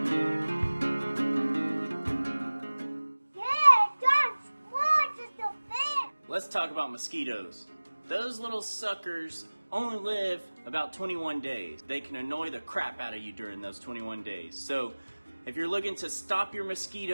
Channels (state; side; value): inverted; both; correlation -1.00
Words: talk about mosquitoes. Those little suckers only live about 21 days. They can annoy the crap out of you during those 21 days. So if you're looking to stop your